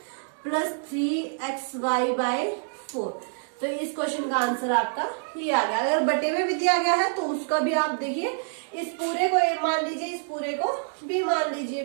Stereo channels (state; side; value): silent; left; digital silence